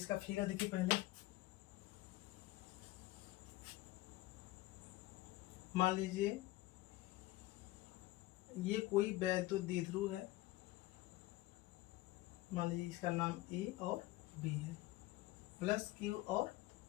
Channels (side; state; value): right; quieter; 18.0 dB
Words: फिगर देखिए पहले, मान लीजिए ये कोई वैद्युत द्विध्रुव है, मान लीजिए इसका नाम A और B है, प्लस Q और